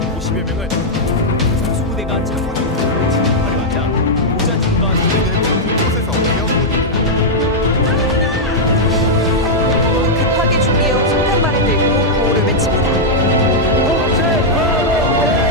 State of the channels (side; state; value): both; normal; correlation -0.05